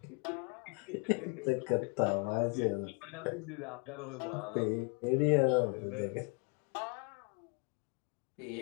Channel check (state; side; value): quieter; right; 35.3 dB